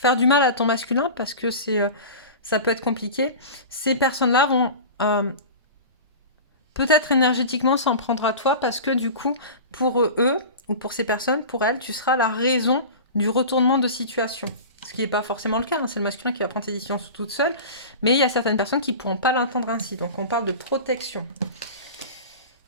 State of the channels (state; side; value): inverted; both; correlation -0.32